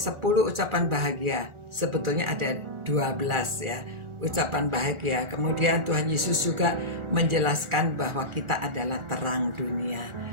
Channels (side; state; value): left; late; 1.4 ms